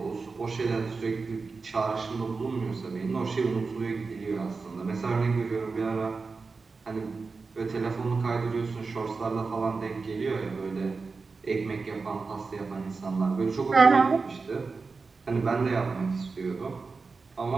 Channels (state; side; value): quieter; left; 4.4 dB